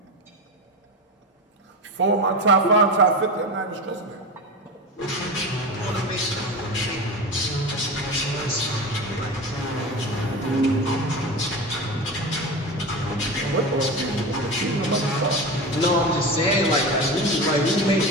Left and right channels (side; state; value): both; normal; correlation 0.25